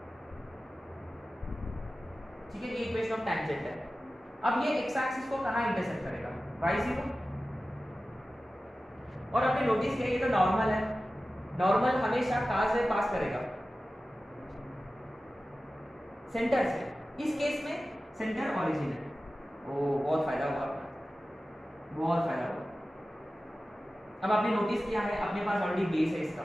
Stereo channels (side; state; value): both; normal; correlation 0.95